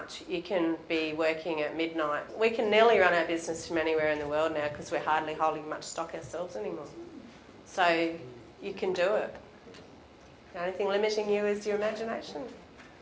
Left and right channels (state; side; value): identical; both; correlation 1.00